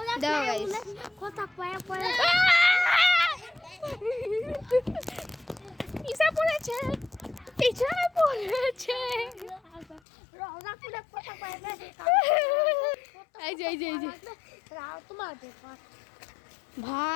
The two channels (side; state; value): right; drops out; at 10.0 s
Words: দাও তাই guys। কথা কয় পিছা পড়েছে রোজা পুরো কথা কয় এই যে রাও তোমার দেখো